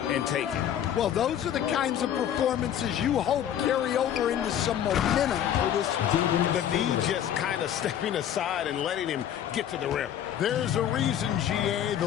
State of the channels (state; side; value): quieter; right; 10.2 dB